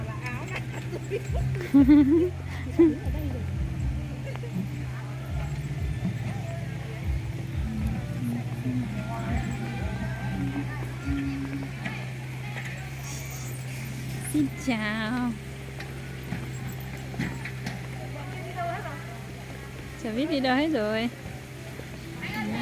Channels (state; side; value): identical; both; correlation 1.00